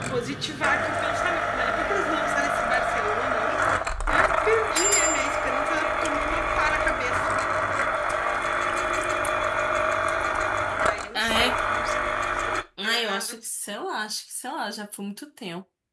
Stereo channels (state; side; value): identical; both; correlation 1.00